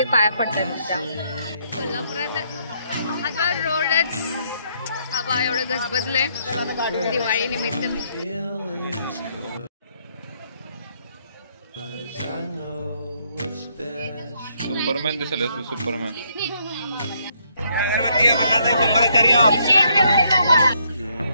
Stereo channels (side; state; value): both; inverted; correlation -0.72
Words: पाया पडतात त्या. कोल्हापुरात महाद्वार रोडच बाबा एवढं गजबजलंय दिवाळी निमित्त. सुपरमॅन दिसले तू, सुपरमॅन.